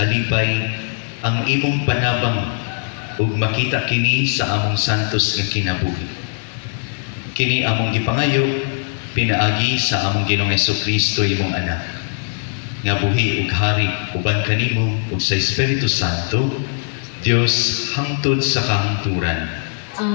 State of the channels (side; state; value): right; silent; digital silence